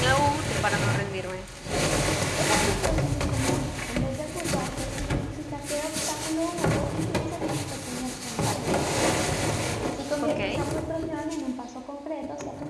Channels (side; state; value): both; identical; correlation 1.00